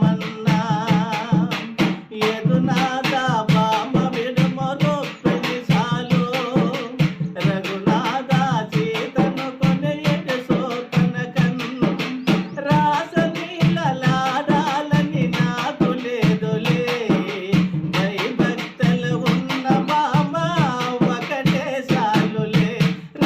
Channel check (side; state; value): both; identical; correlation 1.00